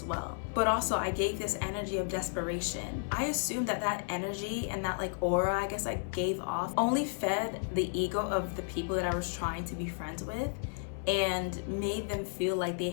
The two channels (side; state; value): right; silent; 56 dB below the other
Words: well. But also I gave this energy of desperation. I assumed that energy and that aura I guess I gave off only fed the ego of the people that I was trying to be friends with and made them feel like they